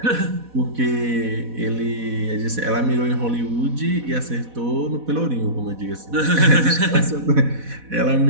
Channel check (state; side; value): late; left; 4.1 ms